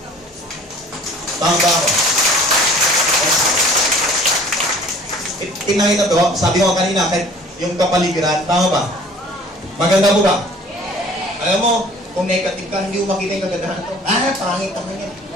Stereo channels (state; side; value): normal; both; correlation 0.50